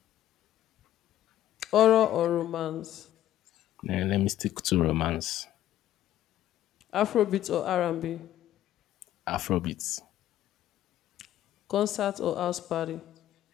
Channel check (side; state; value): right; quieter; 12.7 dB